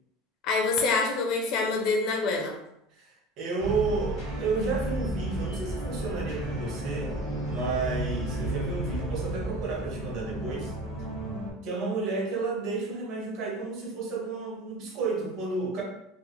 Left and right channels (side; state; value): both; normal; correlation 0.37